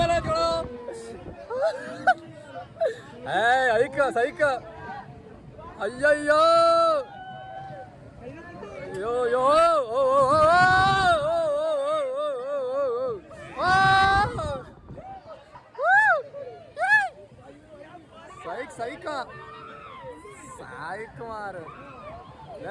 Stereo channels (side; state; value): both; identical; correlation 1.00